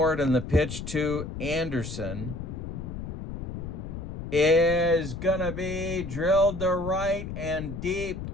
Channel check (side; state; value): left; noise; rumble, 7 dB below the sound